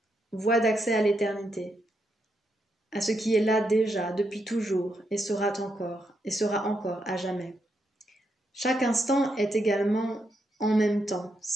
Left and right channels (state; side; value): normal; both; correlation 0.81